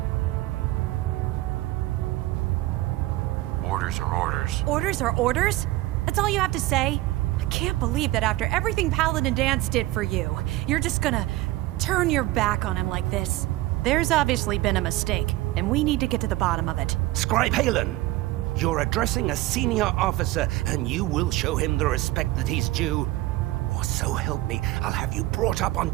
orders are orders. Orders are orders? That's all you have to say? I can't believe that after everything Paladin Danse did for you, you're just gonna turn your back on him like this. There's obviously been a mistake, and we need to get to the bottom of it. Scribe Haylen, you're addressing a senior officer, and you will show him the respect that he's due. Or so help me, I'll have you brought up on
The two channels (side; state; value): left; quieter; 17.7 dB